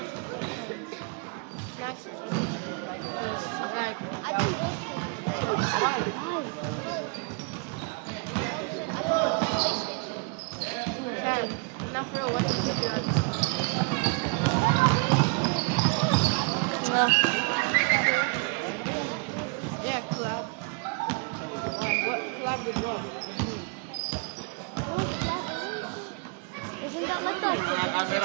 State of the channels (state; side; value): quieter; left; 33.2 dB